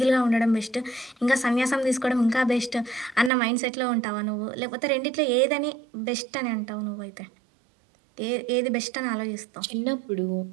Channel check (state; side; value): drops out; left; at 3.3 s